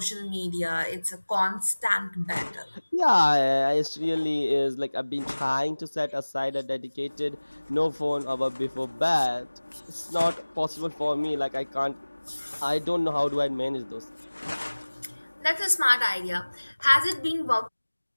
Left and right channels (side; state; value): both; inverted; correlation -1.00